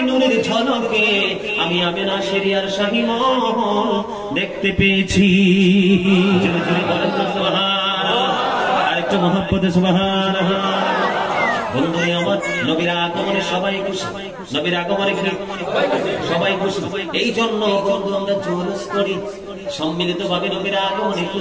নূরের ঝলকে আমি আমিনা শরিয়ার শাহী মহল দেখতে পেয়েছি। জোরে জোরে বলেন সুবহানাল্লাহ। আরেকটু মহব্বতে সুবহানাল্লাহ। বন্ধু আমার নবীর আগমনে সবাই খুশি, নবীর আগমনে সবাই খুশি। এই জন্য বন্ধু আমরা জোরস করি সম্মিলিত ভাবে নবীর আগমনে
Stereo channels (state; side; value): identical; both; correlation 1.00